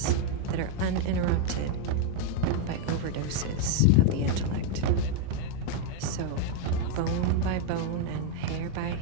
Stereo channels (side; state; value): both; different; correlation 0.00